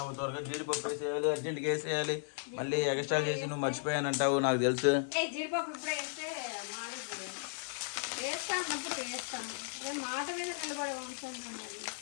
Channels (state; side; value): silent; right; digital silence